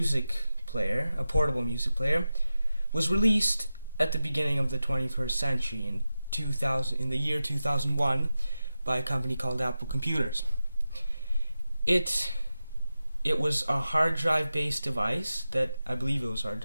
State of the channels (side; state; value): both; inverted; correlation -0.93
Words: player, a portable music player, was released at the beginning of the 21st century in the year 2001 by a company called Apple Computers. It was a hard drive based device that I believe it was hard